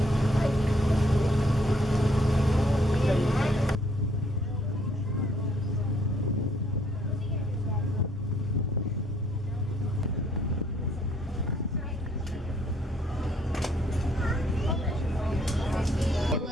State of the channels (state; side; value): normal; both; correlation 0.66